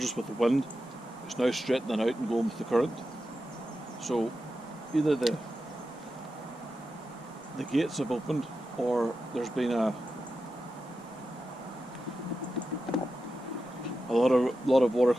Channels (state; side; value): normal; both; correlation 0.90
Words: us with the wind, it's now straightening out and going with the current. So either the gates have opened, or there's been a lot of water